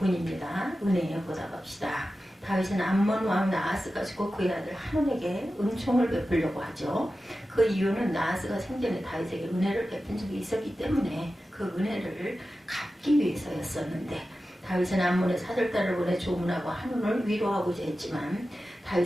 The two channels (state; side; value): normal; both; correlation 0.93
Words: 은혜에 보답합시다. 다윗은 암몬 왕 나하스가 죽고 그의 아들 한온에게 은총을 베풀려고 하죠. 그 이유는 나하스가 생전에 다윗에게 은혜를 베푼 적이 있었기 때문에 그 은혜를 갚기 위해서였었는데 다윗은 암몬의 사절단을 보내 조문하고 한온을 위로하고자 했지만